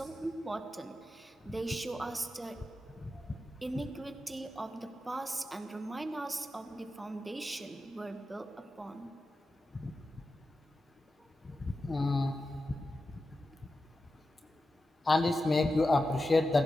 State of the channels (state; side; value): normal; both; correlation 0.91